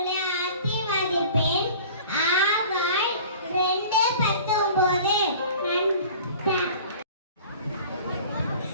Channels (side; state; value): both; inverted; correlation -0.44